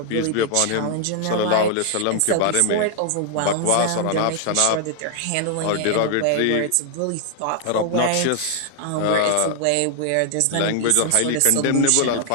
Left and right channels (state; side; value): different; both; correlation 0.00